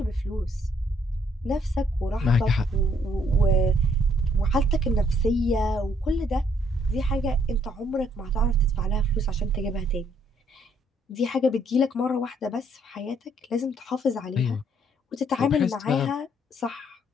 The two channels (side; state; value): both; normal; correlation 0.68